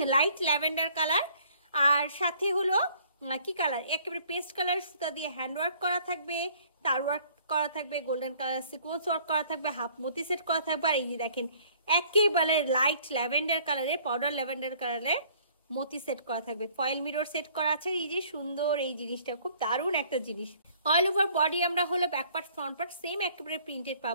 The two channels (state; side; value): inverted; both; correlation -0.58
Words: লাইট ল্যাভেন্ডার কালার, আর সাথে হলো কি কালার, একেবারে পেস্ট কালার সুতা দিয়ে হ্যান্ড ওয়ার্ক করা থাকবে, তার ওয়ার্ক করা থাকবে, গোল্ডেন কালার সিকোয়েন্স ওয়ার্ক করা থাকবে, হাফ মতি সেট করা থাকবে। আর এই যে দেখেন একেবারে লাইট ল্যাভেন্ডার কালারে, পাউডার ল্যাভেন্ডার কালারে মতি সেট করা থাকবে, ফয়েল মিরর সেট করা আছে। এই যে সুন্দর এই জিনিসটা, খুব দারুণ একটা জিনিস। অল ওভার বডি আমরা হলো back part front part same একেবারে প্রিন্টেড